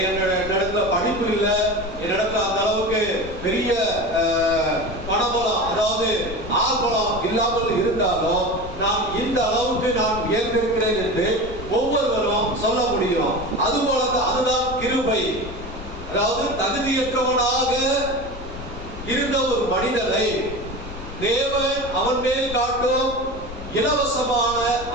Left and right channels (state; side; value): noise; left; rumble, 12 dB below the sound